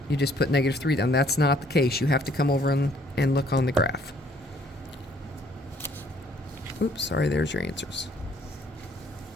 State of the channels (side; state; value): both; normal; correlation 0.62